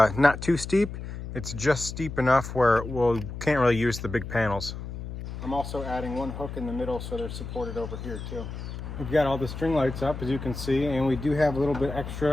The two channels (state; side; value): noise; left; hum, 8 dB below the sound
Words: too steep, it's just steep enough where we can't really use the big panels. I'm also adding 1 hook in the middle so they're supported over here too. We've got all the string lights up, as you can see, and we do have a little bit